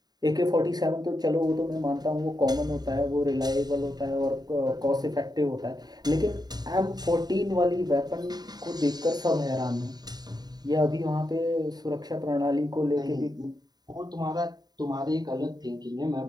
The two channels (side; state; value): left; late; 0.19 ms